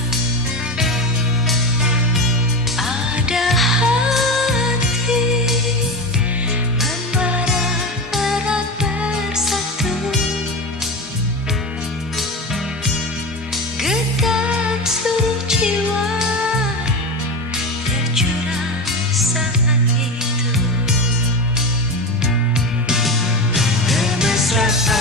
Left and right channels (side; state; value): both; normal; correlation 0.22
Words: Ada hati membara erat bersatu, getar seluruh jiwa tercurah saat itu.